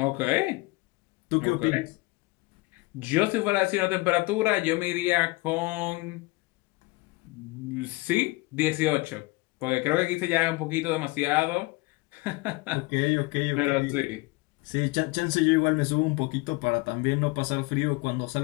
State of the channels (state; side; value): quieter; right; 23.5 dB